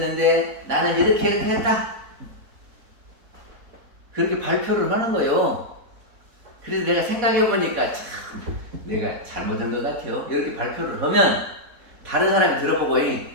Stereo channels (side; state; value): left; late; 4.1 ms